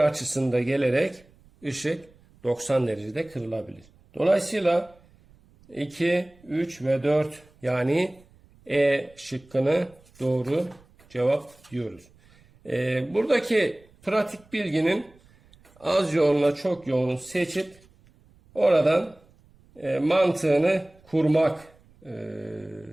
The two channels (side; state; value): right; noise; rumble, 29 dB below the sound